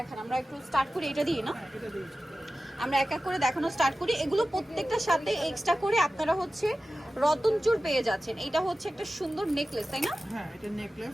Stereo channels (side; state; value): both; normal; correlation 0.95